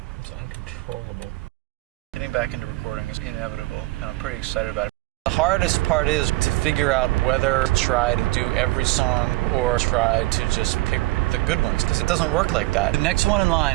It's uncontrollable. Getting back into recording is inevitable, and I'm pretty excited about it. The hardest part is to figure out whether to try to do every song or try to just pick the good ones, because it doesn't work like that. The next one in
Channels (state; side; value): quieter; left; 20.3 dB